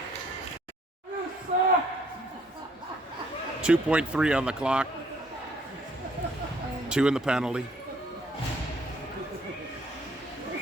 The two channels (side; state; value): both; normal; correlation 0.63